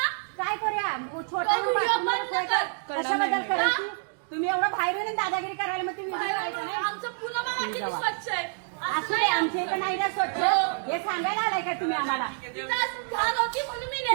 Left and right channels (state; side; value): silent; left; digital silence